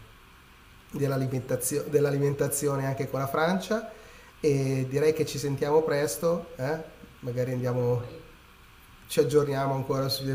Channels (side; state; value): both; identical; correlation 1.00